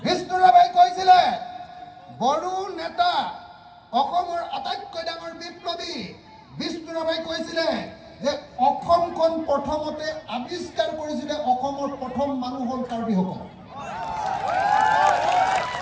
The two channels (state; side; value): identical; both; correlation 1.00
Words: বিষ্ণুৰাভাই কৈছিলে বড়ো নেতা অসমৰ আটাইতকৈ ডাঙৰ বিপ্লৱী বিষ্ণুৰাভাই কৈছিলে যে অসমখন প্ৰথমতে আৱিষ্কাৰ কৰিছিলে অসমৰ প্ৰথম মানুহ হ'ল কাৰ্বিসকল